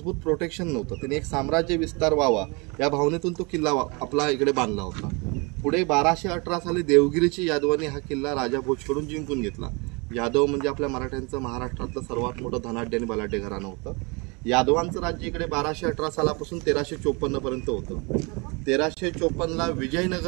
प्रोटेक्शन नव्हतं, त्याने एक साम्राज्य विस्तार व्हावा या भावनेतून तो किल्ला आपला इकडे बांधला होता। पुढे 1218 साली देवगिरीची यादवांनी हा किल्ला राजा भोजकडून जिंकून घेतला। यादव म्हणजे आपल्या मराठ्यांचं महाराष्ट्रातलं सर्वात मोठं धनाढ्य आणि बलाढ्य घराणं होतं। यादवांचं राज्य इकडे 1218 सालापासून 1354 पर्यंत होतं। 1354 ला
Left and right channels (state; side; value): quieter; left; 29.4 dB